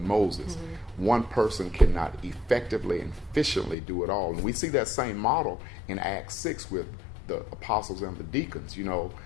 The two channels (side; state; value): right; drops out; at 3.8 s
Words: Moses. Mm-hmm. One person cannot effectively and efficiently do it all. And we see that same model in Acts 6 with the apostles and the deacons.